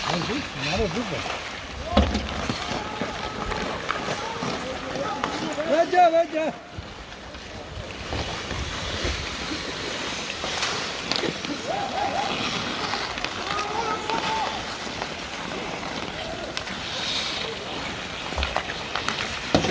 Анди нараа зүг. Ваджа.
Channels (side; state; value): both; identical; correlation 1.00